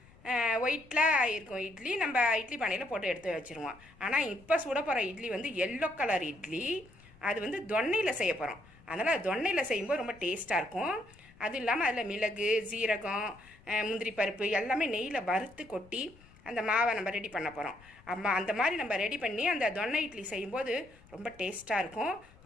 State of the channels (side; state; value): left; noise; rumble, 25 dB below the sound